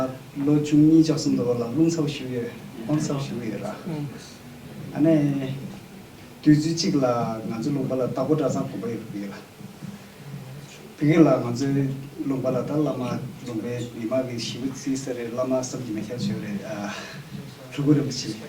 Lo chungni josum do la lung sau shuye, on sau shuye ra. Ane tuju chik la ngazu lung bala tabu da sa ko bai ru la. Pige la ngazu lung bala da lama lung be ima ge shibu si sare lama sab ji me kya shure chugure bichi.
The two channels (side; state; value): both; identical; correlation 1.00